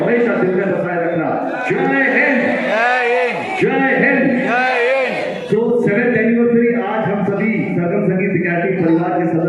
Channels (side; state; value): both; identical; correlation 1.00